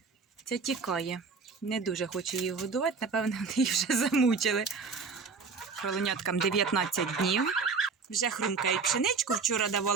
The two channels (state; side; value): quieter; left; 4.9 dB